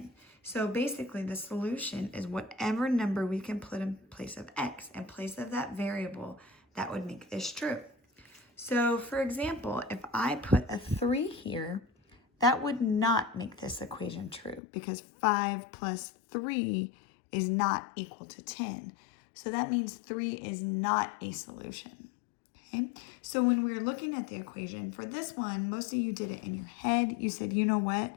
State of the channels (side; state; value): right; drops out; at 14.6 s